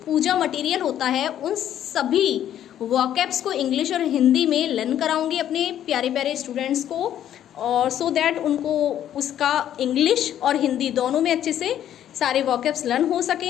पूजा मटेरियल होता है, उन सभी वोकैब्स को इंग्लिश और हिंदी में लर्न कराऊंगी अपने प्यारे प्यारे स्टूडेंट्स को, और सो दैट उनको उसका इंग्लिश और हिंदी दोनों में अच्छे से सारे वोकैब्स लर्न हो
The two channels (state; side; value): quieter; right; 10.9 dB